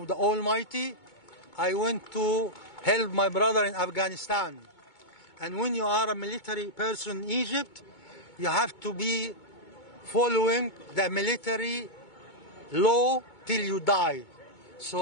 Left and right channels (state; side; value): late; right; 2.2 ms